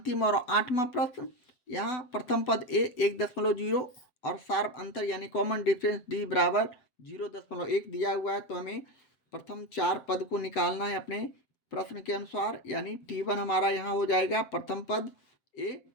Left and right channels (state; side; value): late; right; 7.6 ms